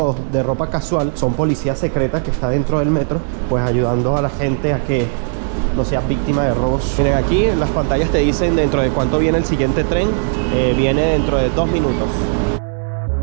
de ropa casual, son policías secretas que están dentro del metro, pues ayudando a la gente a que no seas víctima de robos. Miren, aquí en las pantallas te dicen dentro de cuánto viene el siguiente tren. Viene dentro de 2 minutos.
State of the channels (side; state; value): left; silent; digital silence